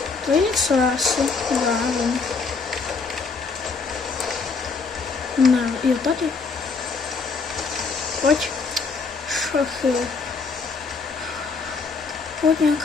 To je něco asi, nevím. Ne, jo, tady. Pojď. Šachy. Pojď,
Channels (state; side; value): quieter; right; 4.7 dB